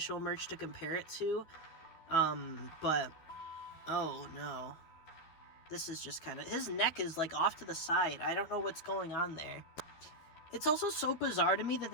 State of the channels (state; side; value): late; right; 12 ms